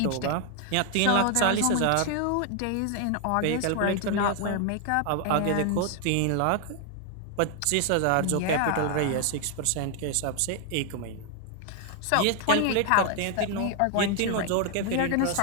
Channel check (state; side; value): different; both; correlation 0.01